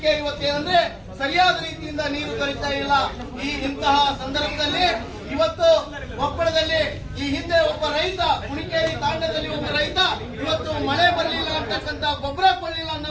ಇವತ್ತೇನಂದ್ರೆ ಸರಿಯಾದ ರೀತಿಯಿಂದ ನೀರು ದೊರೀತಾ ಇಲ್ಲ. ಇಂತಹ ಸಂದರ್ಭದಲ್ಲಿ ಇವತ್ತು ಕೊಪ್ಪಳದಲ್ಲಿ ಈ ಹಿಂದೆ ಒಬ್ಬ ರೈತ, ಕುಣಿಕೇರಿ ತಾಂಡದಲ್ಲಿ ಒಬ್ಬ ರೈತ ಇವತ್ತು ಮಳೆ ಬರಲಿಲ್ಲ ಅಂತಕ್ಕಂತ, ಗೊಬ್ಬರ ಕೊಡಲಿಲ್ಲ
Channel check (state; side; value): identical; both; correlation 1.00